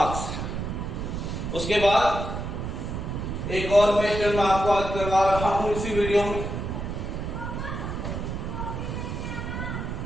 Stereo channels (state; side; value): noise; right; rumble, 4 dB below the sound